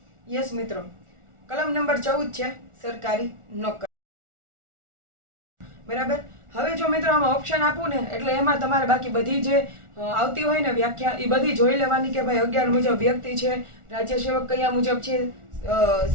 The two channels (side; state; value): left; late; 1.4 ms